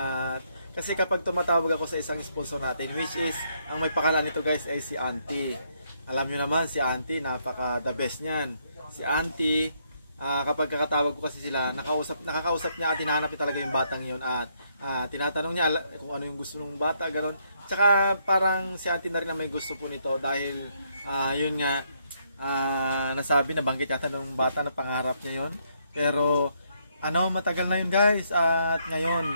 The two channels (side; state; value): both; inverted; correlation -0.74